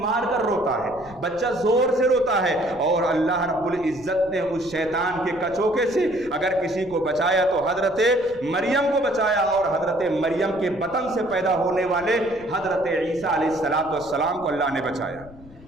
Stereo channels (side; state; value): left; noise; rumble, 21 dB below the sound